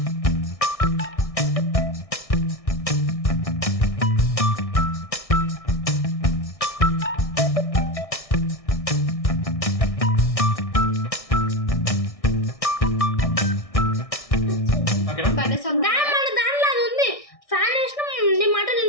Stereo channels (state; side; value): late; right; 1.6 ms